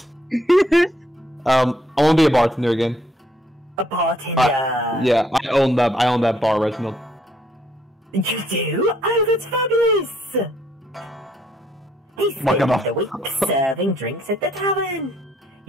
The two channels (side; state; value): both; normal; correlation 0.68